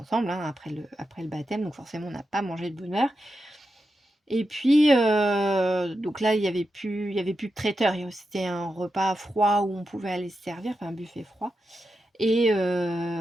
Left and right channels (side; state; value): both; normal; correlation 0.88